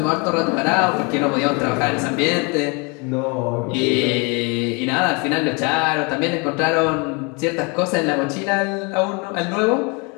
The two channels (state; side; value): quieter; right; 31.1 dB